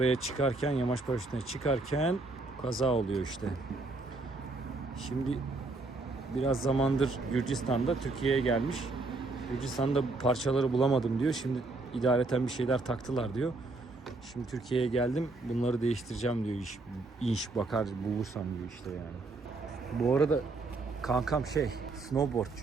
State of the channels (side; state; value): left; quieter; 3.3 dB